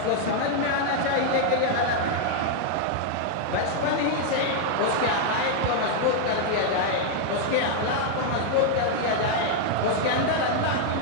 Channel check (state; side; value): different; both; correlation 0.00